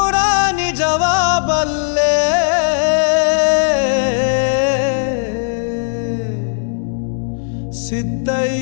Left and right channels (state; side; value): silent; right; digital silence